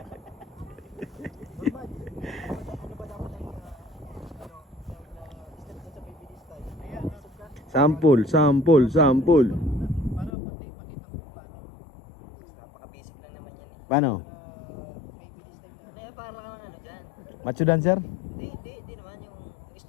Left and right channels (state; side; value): drops out; right; at 10.3 s